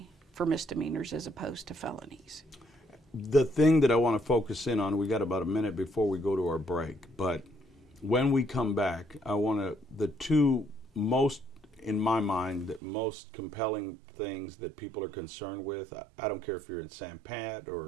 for misdemeanors as opposed to felonies. The thing that I want to focus in on, we got about a minute before we go to our break, but when we come back, the two most, in my mind, the most compelling things that people are concerned with, I don't care if you're in San Pat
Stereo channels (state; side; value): drops out; left; at 12.8 s